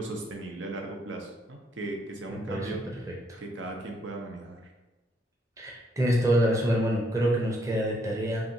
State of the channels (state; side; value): normal; both; correlation 0.72